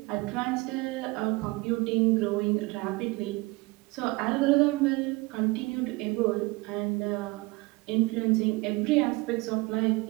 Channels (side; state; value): left; quieter; 24.1 dB